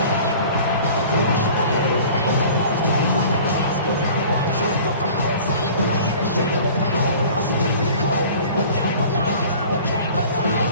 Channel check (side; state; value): both; inverted; correlation -0.45